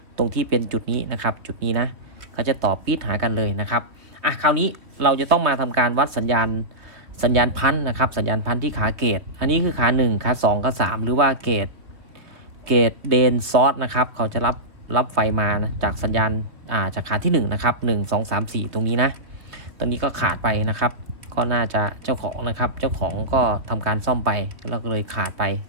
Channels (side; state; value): left; late; 2.9 ms